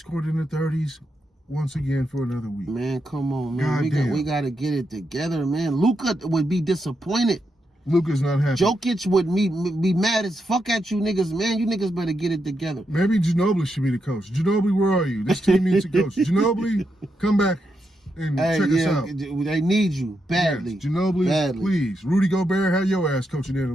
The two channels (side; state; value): both; normal; correlation 0.83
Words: in the 30s once again for another week. Man, come on, man. We got to get it together, man. Luka would be disappointed. Luka's not happy. Jokic would be mad as fuck at you niggas, man. You niggas better get it together. Maybe Ginobili should be the coach. Ginobili, where are you? This team needs a coach. Ginobili, come back and check us out. They need you badly. Yes, Ginobili, please. Rudy Gobert, have your ass coaching in a